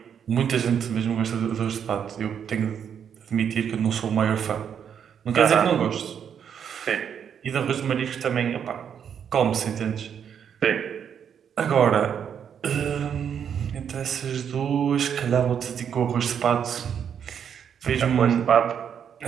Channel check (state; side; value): quieter; left; 8.1 dB